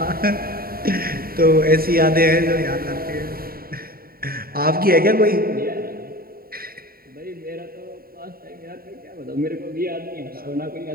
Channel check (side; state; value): left; late; 0.43 ms